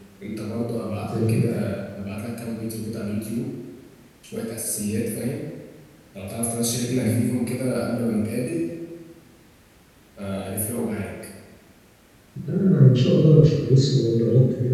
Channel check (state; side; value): identical; both; correlation 1.00